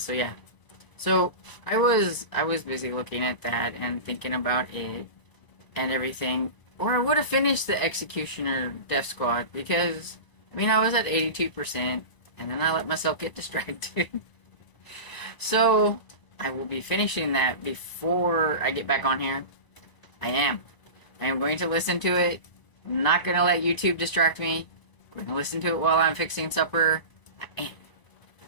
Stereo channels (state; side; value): late; right; 1.0 ms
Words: yeah. So I was busy looking at that and thinking about it and everything. Or I would have finished the Executioner Death Squad, because I mean I was at 82%, and then I let myself get distracted. So I will be finishing that before I get back on here. I am going to listen to it. I'm not going to let YouTube distract me. I'm going to listen to it while I'm fixing supper. I